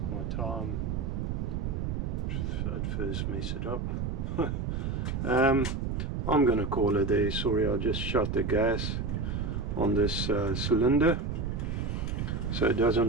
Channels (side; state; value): right; noise; rumble, 1 dB below the sound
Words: my time. At first mess it up. I'm gonna call it there. Sorry, I just shut the gas on this cylinder so it